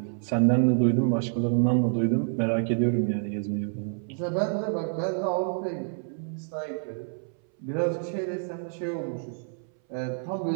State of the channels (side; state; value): left; silent; 60 dB below the other